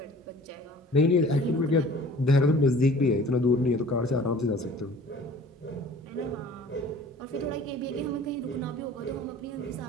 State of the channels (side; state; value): both; normal; correlation 0.47